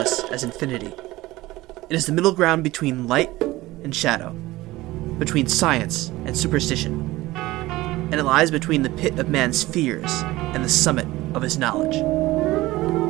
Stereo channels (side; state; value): left; quieter; 18.4 dB